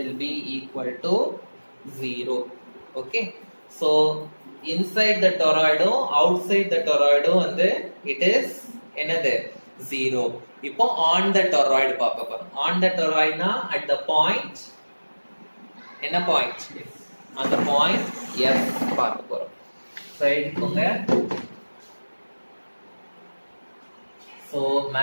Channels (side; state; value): both; inverted; correlation -1.00